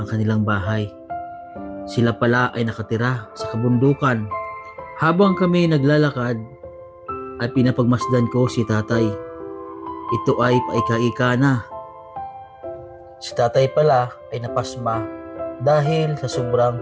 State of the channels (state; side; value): identical; both; correlation 1.00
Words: kanilang bahay. Sila pala ay nakatira sa kabundukan. Habang kami naglalakad ay pinapagmasdan ko si tatay. Ito ay paika-ika na. Si tatay pala ay napasma dahil sa